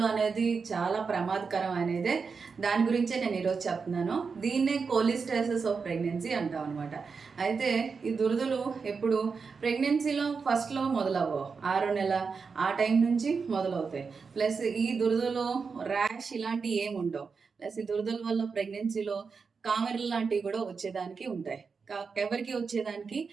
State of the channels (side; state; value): left; quieter; 5.2 dB